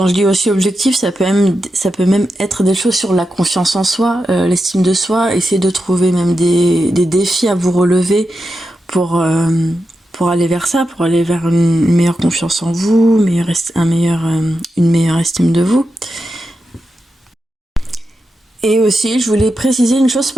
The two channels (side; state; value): both; normal; correlation 0.89